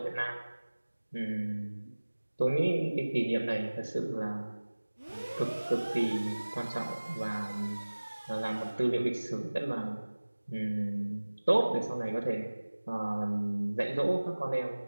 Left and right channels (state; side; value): inverted; both; correlation -1.00